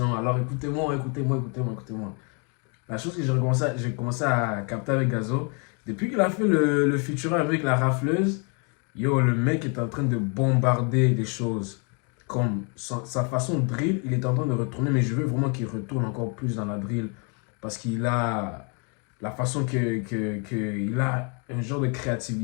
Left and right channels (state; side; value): quieter; right; 36.3 dB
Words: alors écoutez-moi. La chose que j'ai commencé à capter avec Gazo, depuis qu'il a fait le featuring avec la rafleuse, yo, le mec est en train de bombarder des choses. Comme sa façon de drill, il est en train de retourner, mais je veux vraiment qu'il retourne encore plus dans la drill. Parce qu'il a la façon qu'il a un genre de